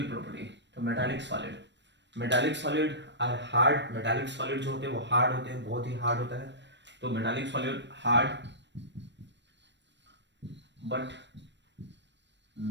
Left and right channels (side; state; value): left; late; 0.52 ms